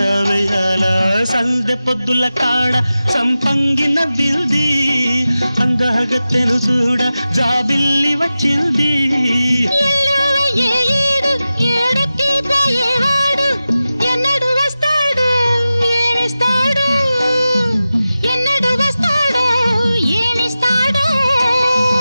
వేయాల సందె పొద్దుల కాడ సంపంగిన బిల్ది అందగత్తెను చూడ జాబిల్లి వచ్చింది ఏడు ఏడుకి పోయేవా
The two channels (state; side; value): inverted; both; correlation -0.94